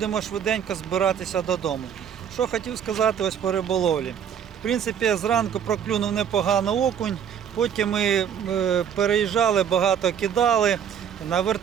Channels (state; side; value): quieter; left; 8.4 dB